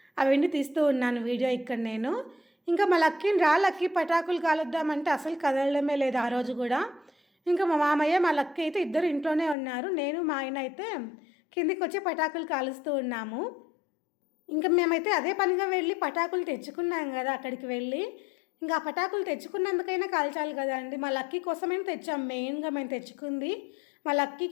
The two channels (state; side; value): drops out; right; at 9.6 s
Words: అవన్నీ తీస్తూ ఉన్నాను వీడియో ఇక్కడ నేను. ఇంకా మా లక్కీని లక్కీ పటాకులు కాలుద్దామంటే అసలు కదలడమే లేదు ఆ రోజు కూడా. ఇంకా మా మామయ్య మా లక్కీ అయితే ఇద్దరు ఇంట్లోనే ఉన్నారు, నేను మా ఆయన అయితే కిందికి వచ్చి పటాకులు కాలుస్తూ ఉన్నాము. ఇంకా మేమైతే అదే పనిగా వెళ్ళి పటాకులు తెచ్చుకున్నాం కదా అక్కడికి వెళ్ళి. ఇంకా ఆ పటాకులు తెచ్చుకున్నందుకైనా కాల్చాలి కదా అండి. మా లక్కీ కోసమే తెచ్చాం, మెయిన్గా మేము తెచ్చుకుంది మా